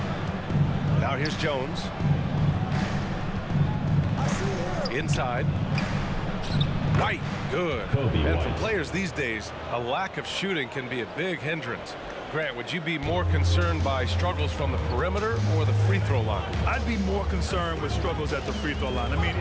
Now here's Jones. Inside. White, good. And for players these days, a lack of shooting can be a big hindrance. Grant, would you be more concerned by struggles from the perimeter or the free throw line? I'd be more concerned with struggles at the free throw line. I mean,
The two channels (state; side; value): identical; both; correlation 1.00